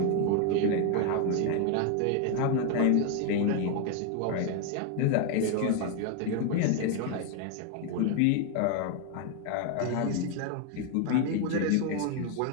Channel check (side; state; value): both; different; correlation 0.01